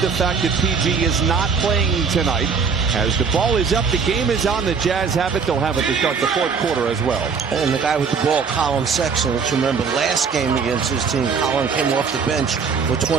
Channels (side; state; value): left; quieter; 5.6 dB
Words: the fact that PG is not playing tonight. As the ball is up, the game is on. The Jazz have it. They'll have it to start the fourth quarter as well. And the guy with the ball, Colin Sexton, let's remember last game against his team, Colin came off the bench for